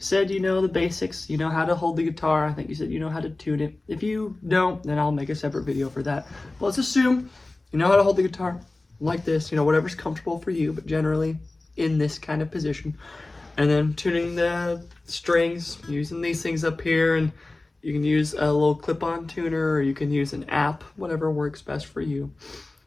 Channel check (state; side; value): quieter; right; 3.0 dB